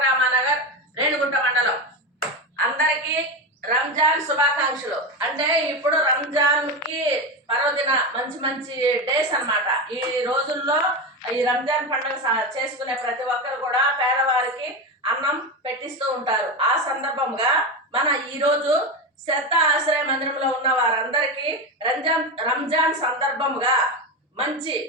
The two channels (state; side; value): normal; both; correlation 0.17